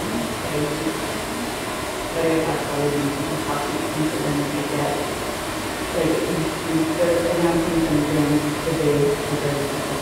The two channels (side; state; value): both; identical; correlation 1.00